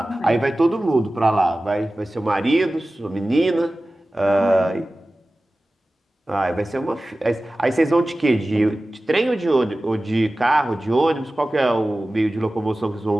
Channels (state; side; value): normal; both; correlation 0.96